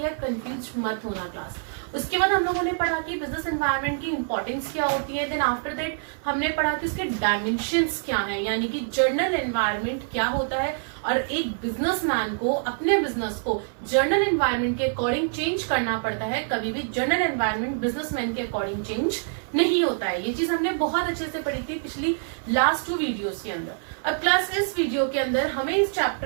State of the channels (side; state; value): left; silent; 58 dB below the other